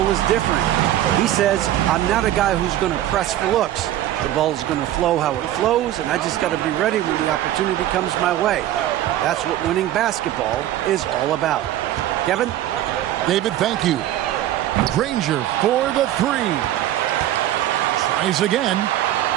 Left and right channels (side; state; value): left; quieter; 13.0 dB